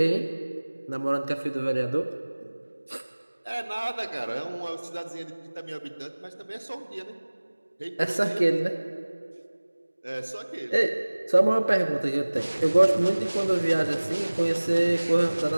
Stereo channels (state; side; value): inverted; both; correlation -1.00